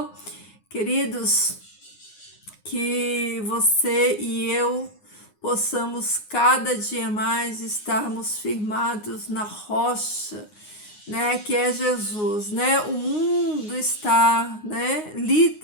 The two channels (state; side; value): late; right; 9.6 ms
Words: Queridos, que você e eu possamos cada dia mais estarmos firmados na rocha, né, que é Jesus, né? O mundo está, né,